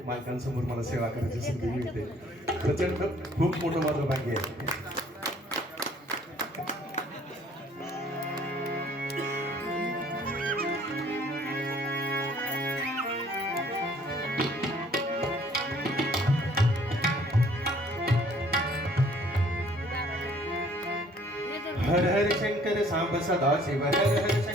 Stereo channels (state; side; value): normal; both; correlation 0.58